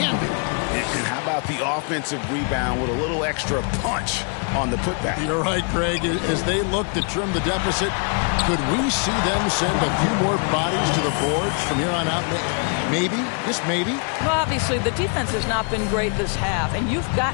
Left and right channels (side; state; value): right; quieter; 39.9 dB